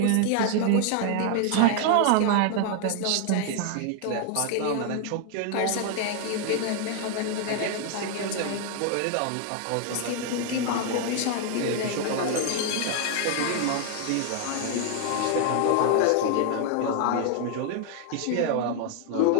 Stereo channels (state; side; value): different; both; correlation 0.00